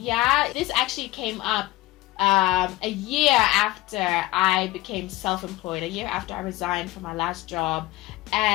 This actually came up a year after I became self-employed, a year after I resigned from my last job.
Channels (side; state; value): right; quieter; 18.3 dB